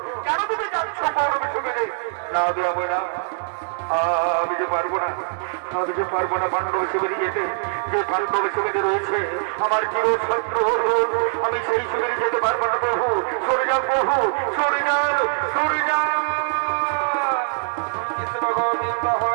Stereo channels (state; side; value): silent; left; digital silence